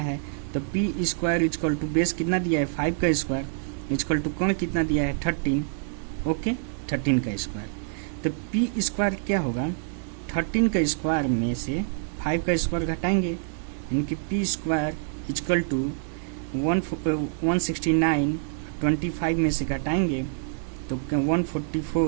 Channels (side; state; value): left; silent; 61 dB below the other